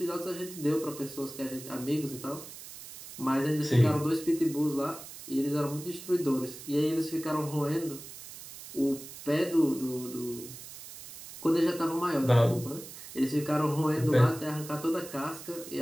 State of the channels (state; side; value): noise; right; hiss, 14 dB below the sound